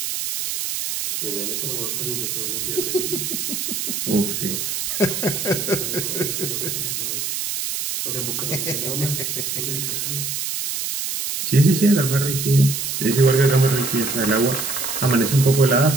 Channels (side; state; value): right; noise; hiss, 3 dB below the sound